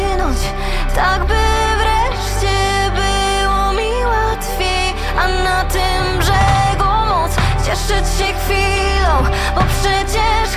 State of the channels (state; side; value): identical; both; correlation 1.00